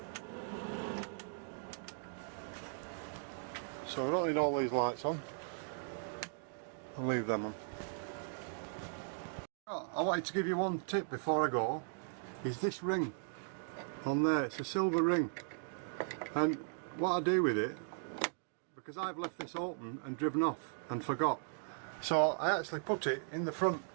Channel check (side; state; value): left; silent; digital silence